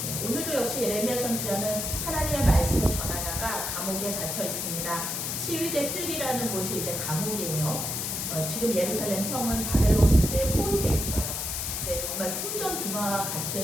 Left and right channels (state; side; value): noise; left; hiss, 2 dB below the sound